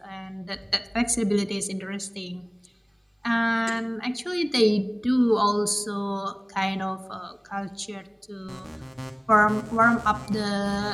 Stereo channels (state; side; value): identical; both; correlation 1.00